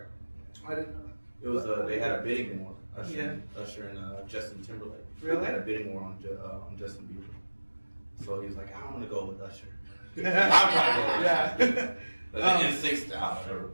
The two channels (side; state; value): both; inverted; correlation -1.00